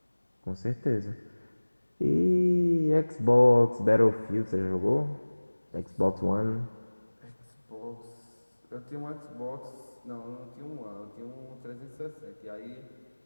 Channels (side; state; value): both; inverted; correlation -1.00